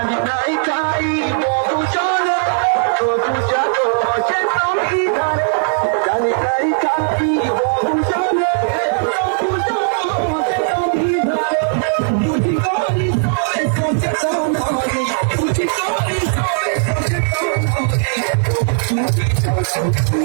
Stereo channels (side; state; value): left; silent; 63 dB below the other